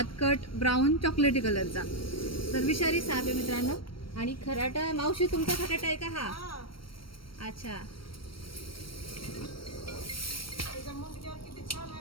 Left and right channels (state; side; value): late; right; 0.74 ms